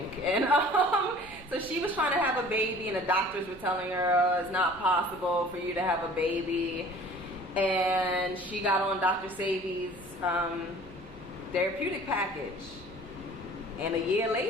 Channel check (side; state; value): both; normal; correlation 0.48